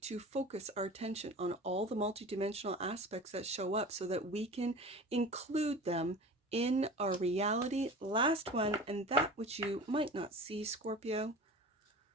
focus our attention on all the multidimensional aspects that show up so that we can include them in our reality. Last one, and that which you might not see, Scorpio,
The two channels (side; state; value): both; normal; correlation 0.37